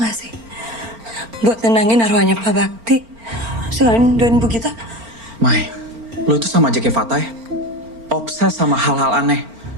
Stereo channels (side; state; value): left; late; 4.4 ms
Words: sih? Buat nenangin arwahnya Pak Bakti. Selain doain Bu Gita. Mai, lo itu sama aja kayak Fatah ya? Obses sama hal-hal aneh.